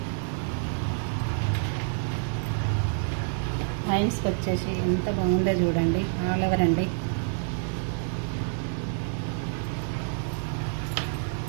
హ్యాండ్స్కి వచ్చేసి ఎంత బాగుందో చూడండి, ఆల్ ఓవర్ అండి.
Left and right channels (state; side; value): silent; left; digital silence